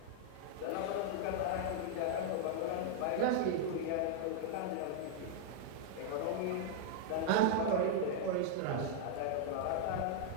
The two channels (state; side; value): different; both; correlation 0.00